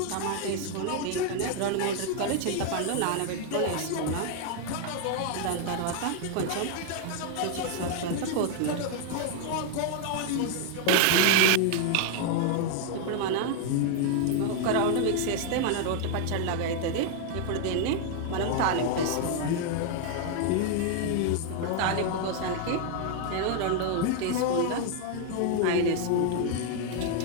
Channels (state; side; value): different; both; correlation 0.00